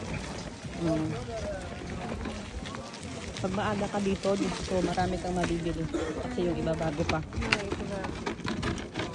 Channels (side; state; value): both; identical; correlation 1.00